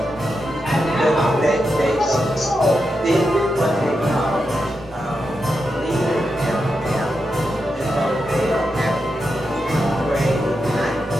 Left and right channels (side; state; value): both; normal; correlation 0.87